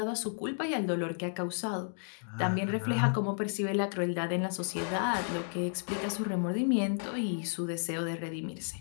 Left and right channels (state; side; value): silent; right; digital silence